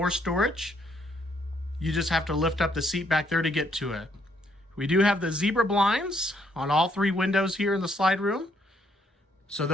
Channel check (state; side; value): normal; both; correlation 0.70